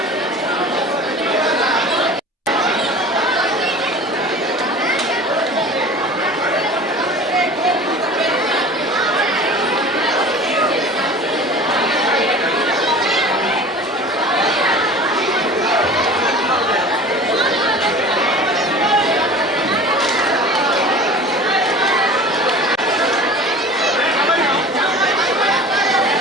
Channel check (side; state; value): both; normal; correlation 0.40